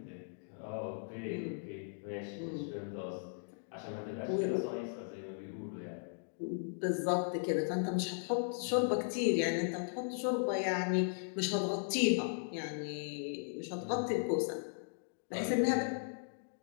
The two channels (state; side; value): silent; right; digital silence